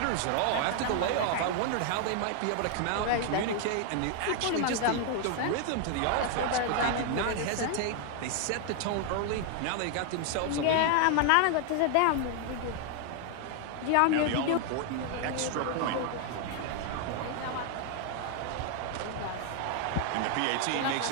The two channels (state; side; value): different; both; correlation 0.00